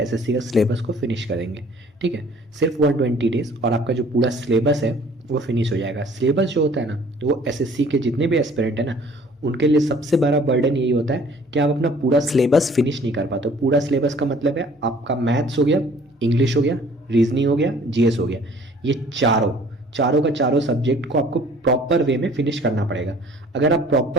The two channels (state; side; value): normal; both; correlation 0.54